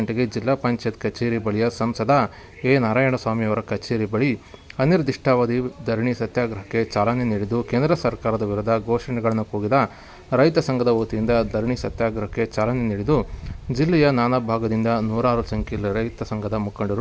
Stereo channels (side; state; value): both; identical; correlation 1.00